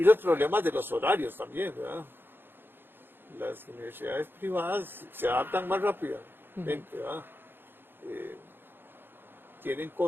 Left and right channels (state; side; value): late; left; 0.10 ms